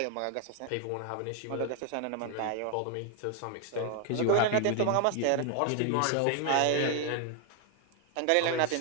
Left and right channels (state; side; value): different; both; correlation 0.00